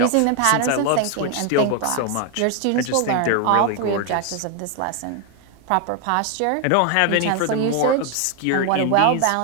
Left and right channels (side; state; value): both; different; correlation 0.01